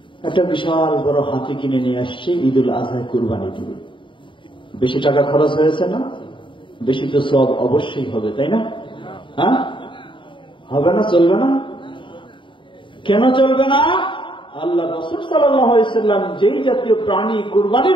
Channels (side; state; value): right; late; 0.24 ms